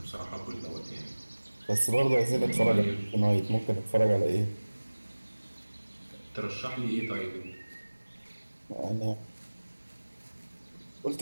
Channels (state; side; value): inverted; both; correlation -1.00